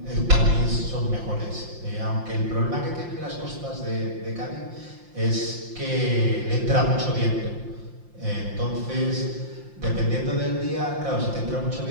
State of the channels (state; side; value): late; left; 5.7 ms